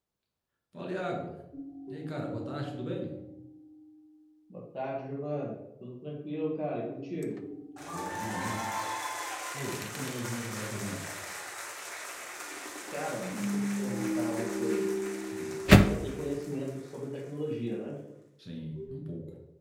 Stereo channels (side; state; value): both; identical; correlation 1.00